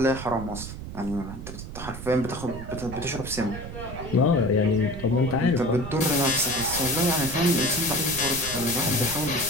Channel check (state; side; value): noise; right; rumble, 10 dB below the sound